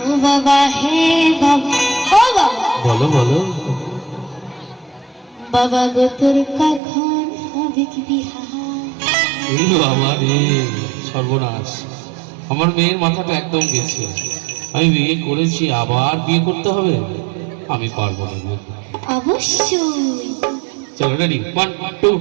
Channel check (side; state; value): left; drops out; at 6.8 s